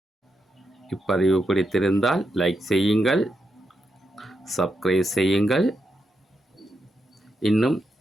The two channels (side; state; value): both; normal; correlation 0.83